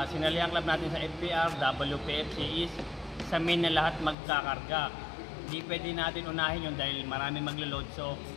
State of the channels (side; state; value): right; drops out; at 4.2 s